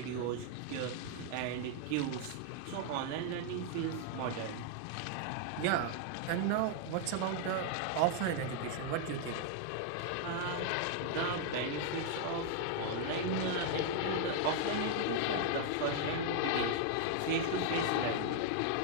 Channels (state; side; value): different; both; correlation 0.00